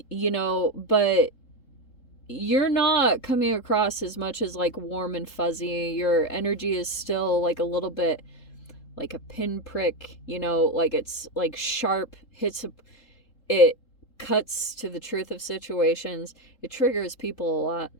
know, but you're not coming across as much as like warm and fuzzy. Your energy is still like a little bit like a pinprick, you know, like it's like sharp, it cuts to the truth of situations. It triggers people a lot.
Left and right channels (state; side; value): late; right; 3.8 ms